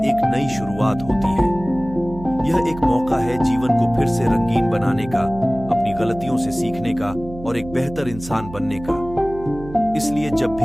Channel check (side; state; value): right; noise; hum, 14 dB below the sound